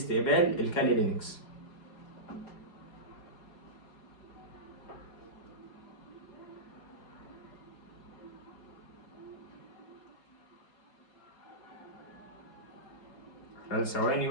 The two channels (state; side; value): late; right; 4.8 ms